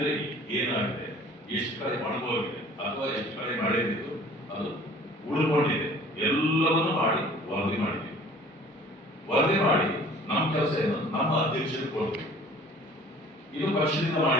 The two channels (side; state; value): both; normal; correlation 0.49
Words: ಏನಾಗಿದೆ, ಎಷ್ಟು ಕಡೆ ಒಣಗೋಗಿದೆ ಅಥವಾ ಎಷ್ಟು ಕಡೆ ಮಳೆ ಬಿದ್ದು ಅದು ಉಳ್ಕೊಂಡಿದೆ, ಎಲ್ಲವನ್ನೂ ಮಾಡಿ ವರದಿ ಮಾಡಿದ್ದೀವಿ. ವರದಿ ಮಾಡಿ ನಮ್ಮ ಕೆಲಸ ಏನು, ನಮ್ಮ ಅಧ್ಯಕ್ಷರಿಗೆ ಕೊಡ್ತೀವಿ. ಇದು ಪಕ್ಷದಿಂದ